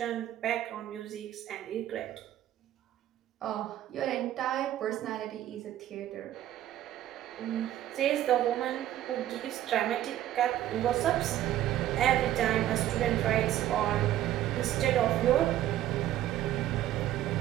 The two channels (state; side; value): quieter; left; 12.8 dB